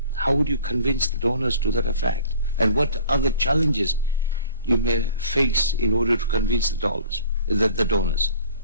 How would you convince the donors to that effect? And what other challenges you may face in order to convince the donors?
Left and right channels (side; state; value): both; inverted; correlation -0.46